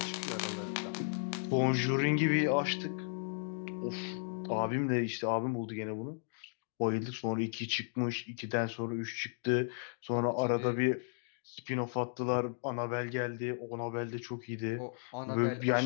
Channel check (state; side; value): silent; right; digital silence